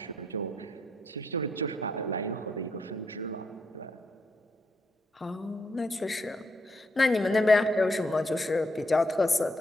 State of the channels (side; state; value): both; normal; correlation 0.77